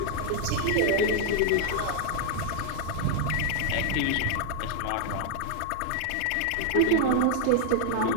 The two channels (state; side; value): different; both; correlation 0.00